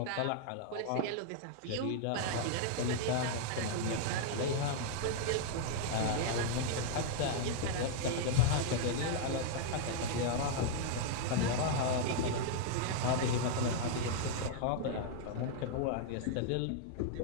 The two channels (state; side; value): different; both; correlation -0.01